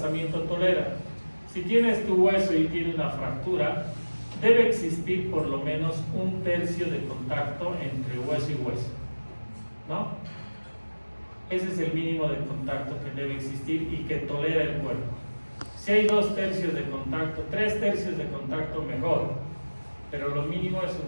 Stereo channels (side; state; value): both; inverted; correlation -1.00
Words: tolera? Si tienes tu hueso y tiene una fractura, debe existir por lo menos 1/3 de contacto entre hueso y hueso, ¿no? Ese es el mínimo de contacto que debe existir y que tolera el cuerpo. Si hay 2/3 de contacto, 3/3 de contacto, mejor, pero lo mínimo es